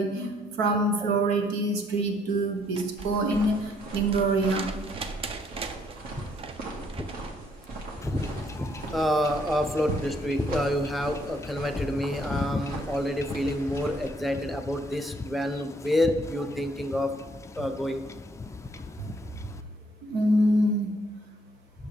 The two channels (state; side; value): normal; both; correlation 0.67